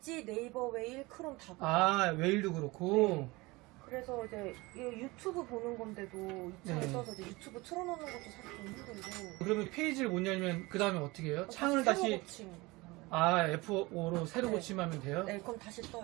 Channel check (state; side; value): quieter; left; 22.7 dB